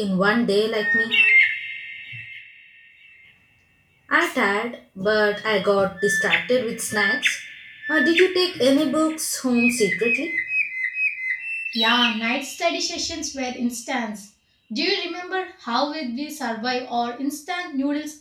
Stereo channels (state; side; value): identical; both; correlation 1.00